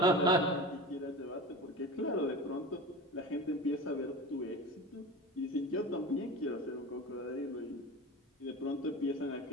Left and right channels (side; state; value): both; normal; correlation 0.31